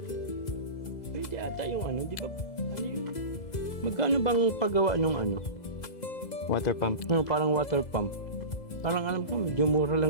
Pwede ata yung ano, di ba? Ano yun? Magkano bang paggawa nung ano? Water pump. Parang water pump. Parang alam ko, medyo mura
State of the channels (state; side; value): late; right; 2.0 ms